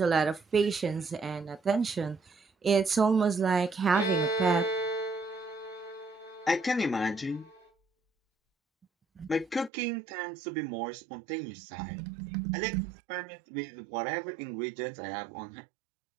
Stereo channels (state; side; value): drops out; left; at 9.7 s